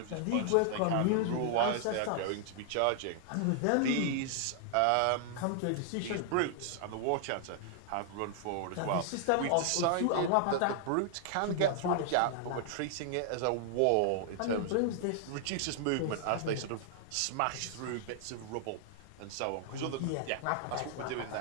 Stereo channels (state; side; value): different; both; correlation -0.01